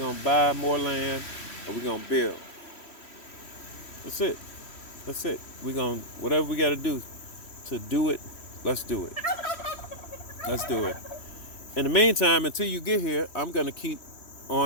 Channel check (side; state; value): right; late; 3.1 ms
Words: to buy more land and we're going to build. That's it. That's it. We're going to, whatever we got to do it, let's do it. Let's do it. In the meantime, until you get here, I'm going to keep